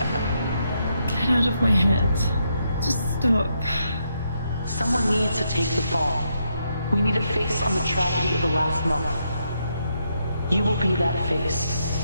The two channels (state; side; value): inverted; both; correlation -0.79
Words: Get out of my head. Just stop. Someone needs to take the fall. We need a face on the tragedy of the last month. You will be that face.